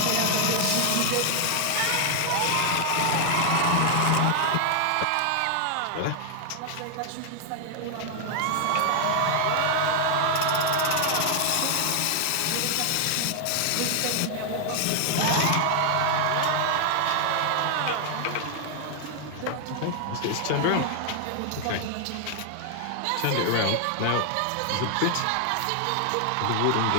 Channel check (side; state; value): both; different; correlation 0.00